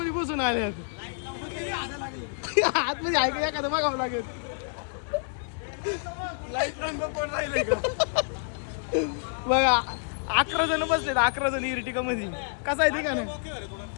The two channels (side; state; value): right; silent; 59 dB below the other